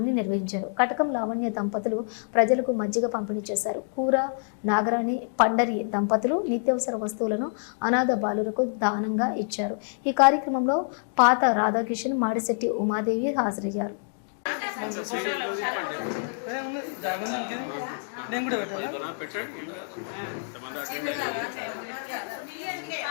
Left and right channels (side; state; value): right; silent; digital silence